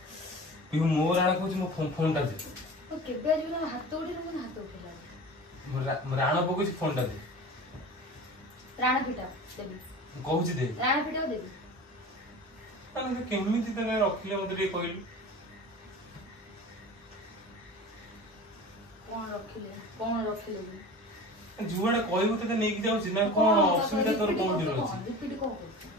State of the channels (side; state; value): both; normal; correlation 0.36